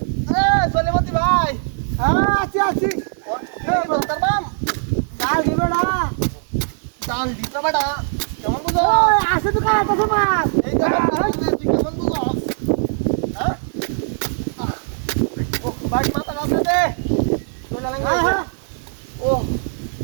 সলেমতি ভাই আছি আছি তোর বাম জাল দিবে না জাল দিতে বেটা কেমন বুঝো আসে তো কার কাছে মাছ এই কেমন কেমন বুঝো হ্যাঁ ও ভাই মাথা কাছে দে ও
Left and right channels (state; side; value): silent; left; 58 dB below the other